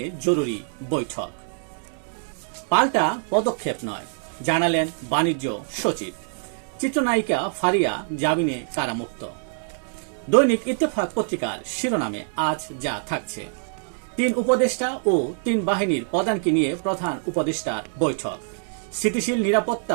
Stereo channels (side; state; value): left; silent; digital silence